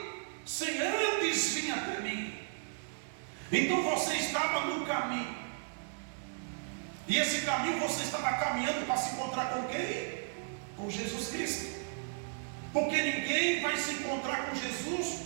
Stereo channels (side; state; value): left; silent; digital silence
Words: sem antes vir até mim. Então você estava no caminho, e esse caminho você estava caminhando para se encontrar com quem? Com Jesus Cristo. Porque ninguém vai se encontrar com